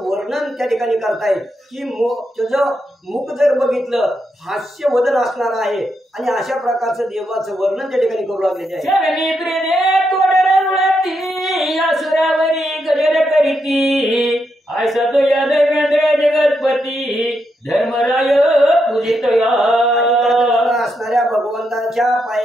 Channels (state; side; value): normal; both; correlation 0.82